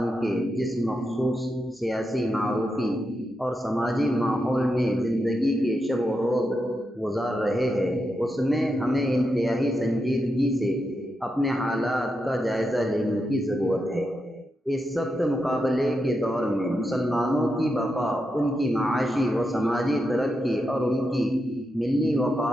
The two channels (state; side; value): normal; both; correlation 0.86